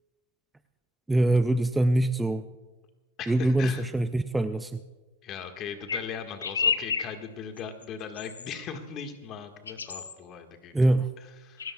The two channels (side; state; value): both; normal; correlation 0.70